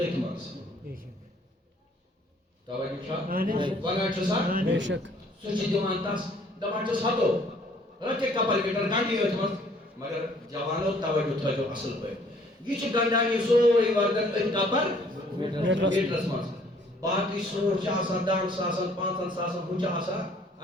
منٛز توجہ چھا ونان چھُ سا بے شک سُہ چھُ دِوان تس دپان چھُس ہتو رکھے کپر میٹر گنڈی أتھۍ منٛز مگر جوانو توجہ تھٲیزیو اصل پٲٹھۍ یہ چھُ گنڈان یہ سورُے وردن أتھۍ کپر میٹرس منٛز باقی سوٹ چھ آسان 10 ساسن 5 ساسن ہُہ چھُ آسان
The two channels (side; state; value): both; normal; correlation 0.59